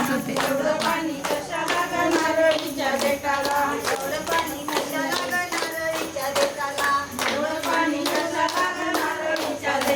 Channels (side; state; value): both; identical; correlation 1.00